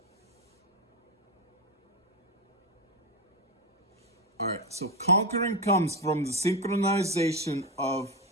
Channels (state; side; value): normal; both; correlation 0.12